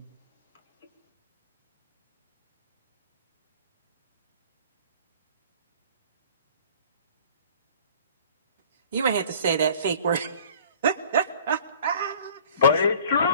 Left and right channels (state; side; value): inverted; both; correlation -0.49